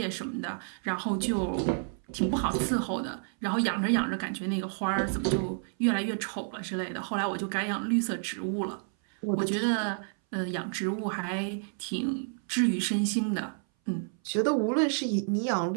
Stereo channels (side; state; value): left; silent; 58 dB below the other